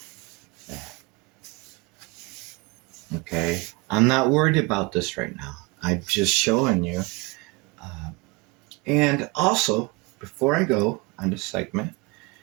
Okay. I'm not worried about this right now. I'm just showing you. And also, before I go on this segment,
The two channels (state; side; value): quieter; left; 25.6 dB